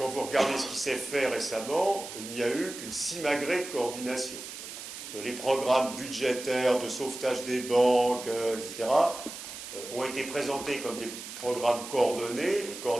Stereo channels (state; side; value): noise; right; hiss, 11 dB below the sound